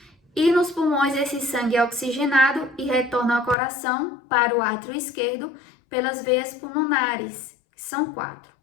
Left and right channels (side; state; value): right; drops out; at 3.6 s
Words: E nos pulmões esse sangue é oxigenado e retorna ao coração para o átrio esquerdo pelas veias pulmonares, que são 4.